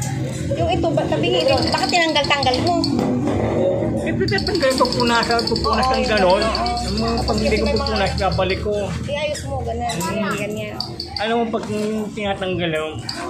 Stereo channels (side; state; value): both; identical; correlation 1.00